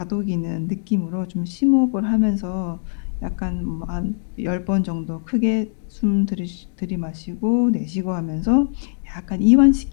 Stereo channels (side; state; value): right; silent; digital silence